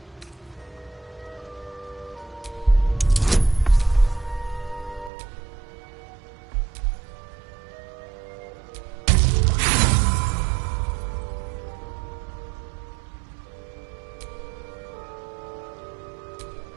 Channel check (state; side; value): drops out; left; at 5.1 s